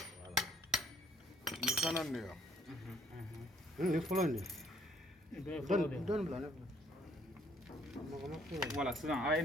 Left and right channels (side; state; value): both; normal; correlation 0.64